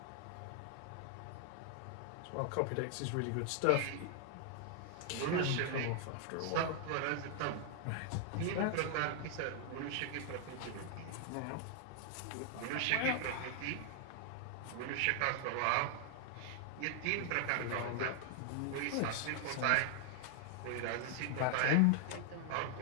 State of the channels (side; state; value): both; different; correlation 0.00